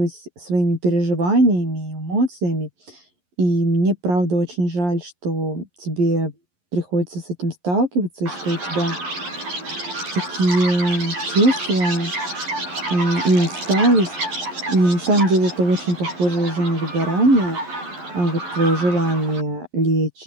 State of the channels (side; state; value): left; late; 11 ms